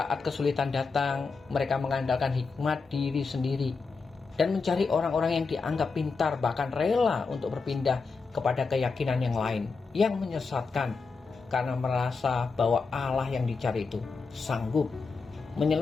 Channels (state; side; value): quieter; right; 4.5 dB